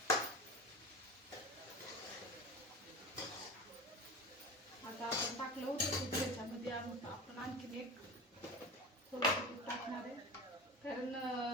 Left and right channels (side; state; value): both; normal; correlation 0.30